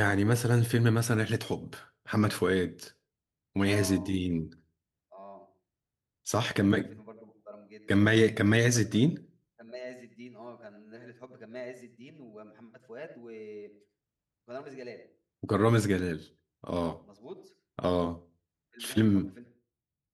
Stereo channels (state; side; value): identical; both; correlation 1.00